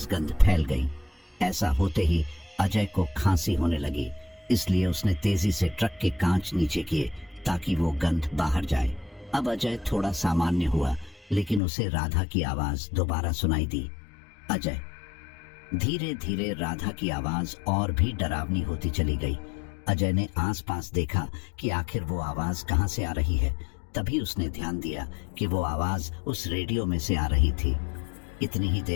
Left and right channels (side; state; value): right; drops out; at 11.6 s